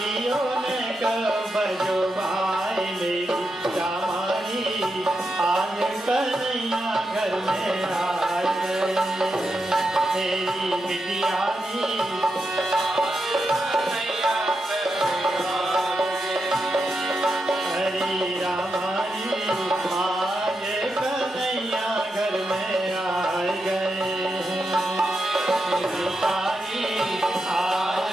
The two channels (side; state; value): both; normal; correlation 0.86